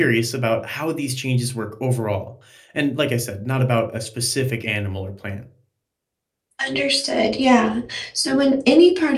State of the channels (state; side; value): identical; both; correlation 1.00